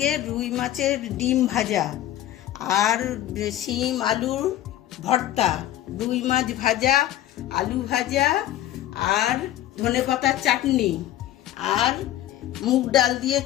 রুই মাছের ডিম ভাজা আর শিম আলুর ভর্তা, রুই মাছ ভাজা, আলু ভাজা আর ধনেপাতার চাটনি আর মুগ ডাল দিয়ে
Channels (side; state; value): right; quieter; 13.2 dB